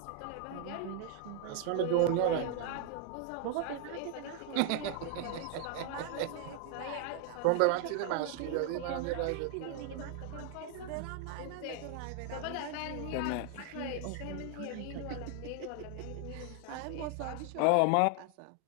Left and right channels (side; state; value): both; different; correlation 0.00